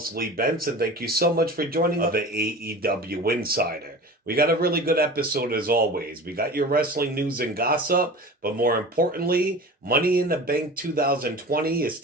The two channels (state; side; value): normal; both; correlation 0.36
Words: Lee Benson. Thank you so much for joining the AEW Insider. We got a really good episode as always. We got your wrestling news and gossip, but more importantly, Money in the Bank 2020 is